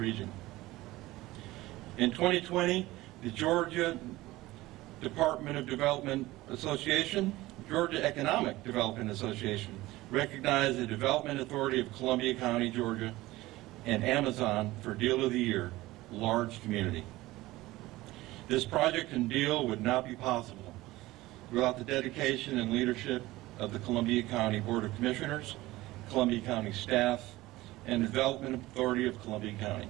In 2020, the Georgia Department of Development Association, Georgia Economic Development Association, recognized the Development Authority of Columbia County, Georgia, and Amazon for Deal of the Year, Large Community. This project and deal would not be possible without the dedication and leadership of the Columbia County Board of Commissioners, Columbia County staff, and the Development Authority of Columbia County.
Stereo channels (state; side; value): quieter; left; 18.3 dB